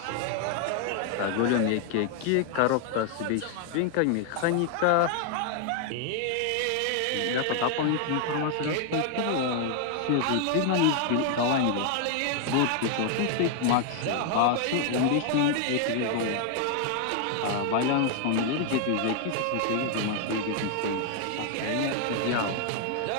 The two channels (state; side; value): different; both; correlation 0.00